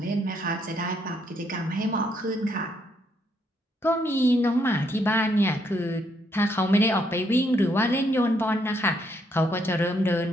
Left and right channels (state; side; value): normal; both; correlation 0.73